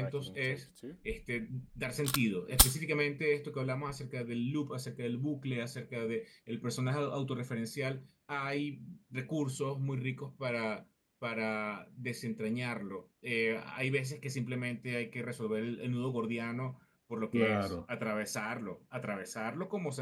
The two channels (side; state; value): both; identical; correlation 1.00